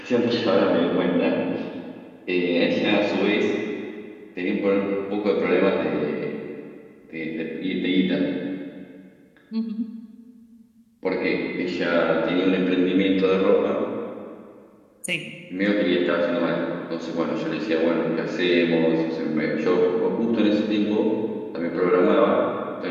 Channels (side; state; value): both; identical; correlation 1.00